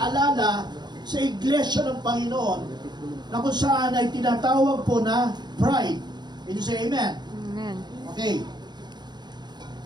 sa iglesia ng Panginoon na kung saan ay tinatawag po na pride. Can you say amen? Amen. Okay.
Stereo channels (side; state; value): left; late; 0.21 ms